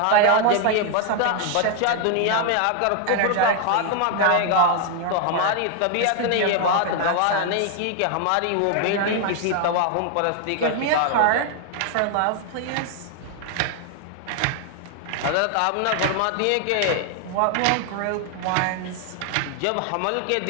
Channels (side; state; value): both; different; correlation 0.00